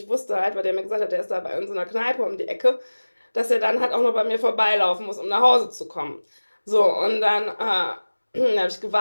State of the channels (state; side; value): inverted; both; correlation -1.00